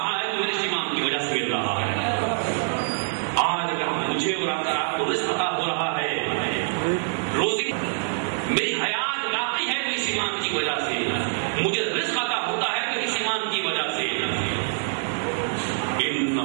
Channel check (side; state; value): left; silent; digital silence